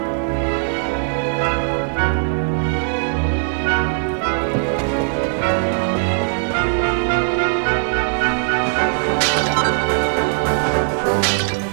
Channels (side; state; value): left; silent; digital silence